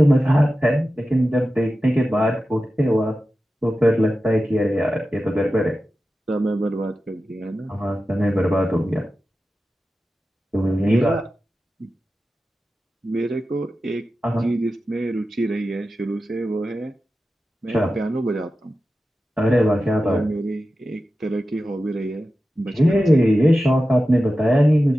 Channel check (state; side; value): normal; both; correlation 0.93